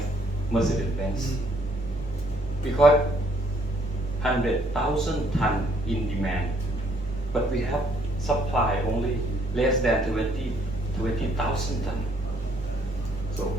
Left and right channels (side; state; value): both; normal; correlation 0.66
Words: Mercedes-Benz. Because 100,000 tons in demand, but we have supply only less than 20,000 tons. So